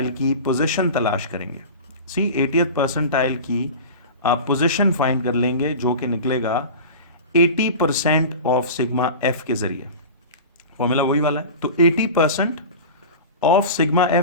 की पोजीशन तलाश करेंगे। 80th परसेंटाइल की आप पोजीशन फाइंड कर लेंगे, जो कि निकलेगा 80% ऑफ सिग्मा एफ के जरिए। फॉर्मूला वही वाला है। तो 80% ऑफ सिग्मा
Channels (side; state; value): both; inverted; correlation -0.32